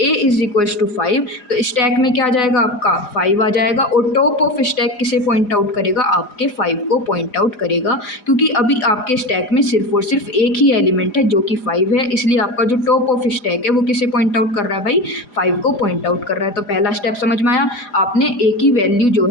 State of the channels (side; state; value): right; late; 4.9 ms